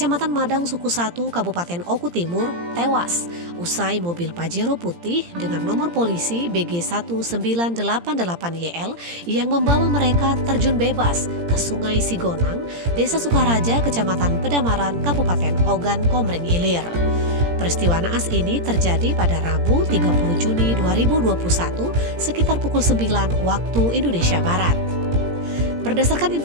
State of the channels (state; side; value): late; left; 17 ms